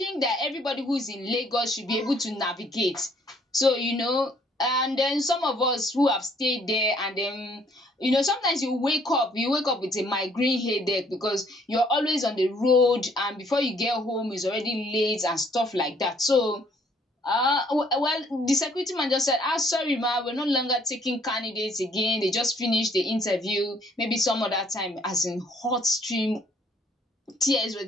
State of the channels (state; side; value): normal; both; correlation 0.63